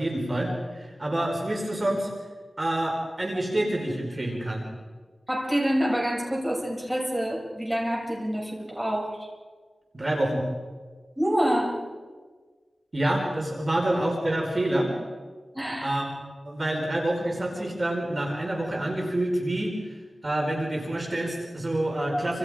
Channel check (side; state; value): both; normal; correlation 0.97